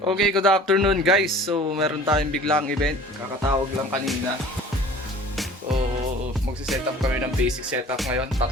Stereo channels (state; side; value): normal; both; correlation 0.46